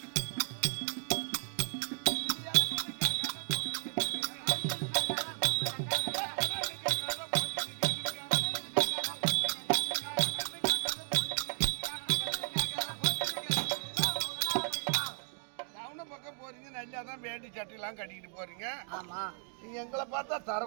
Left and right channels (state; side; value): silent; left; 55 dB below the other